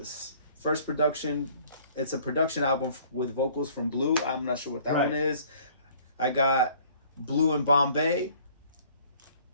First production. It's a production album with vocals from Blue. I'm not sure what that one is. I got Blue in Bombay.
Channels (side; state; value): both; inverted; correlation -0.56